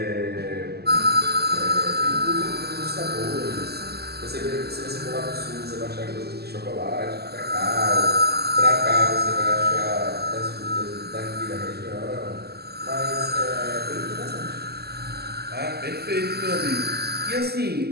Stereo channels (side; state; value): left; late; 0.46 ms